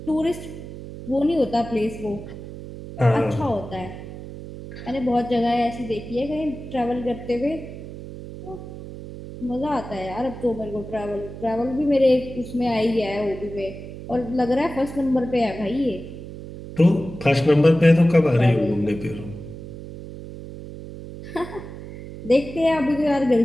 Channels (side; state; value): right; noise; hum, 12 dB below the sound